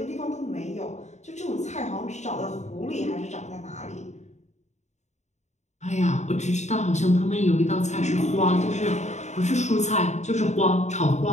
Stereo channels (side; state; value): right; late; 0.33 ms